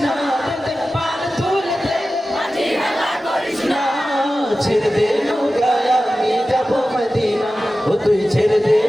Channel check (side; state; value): both; normal; correlation 0.94